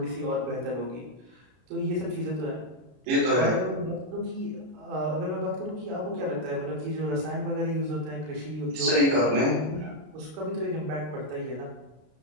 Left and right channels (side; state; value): left; late; 32 ms